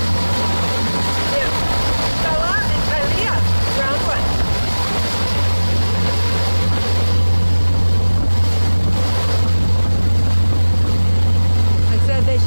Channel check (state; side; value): inverted; both; correlation -1.00